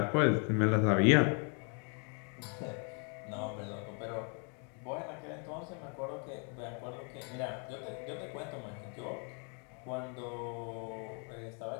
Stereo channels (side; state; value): right; quieter; 39.0 dB